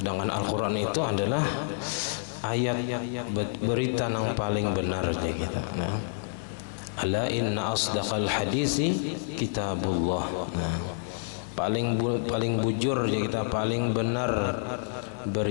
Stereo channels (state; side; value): silent; right; 57 dB below the other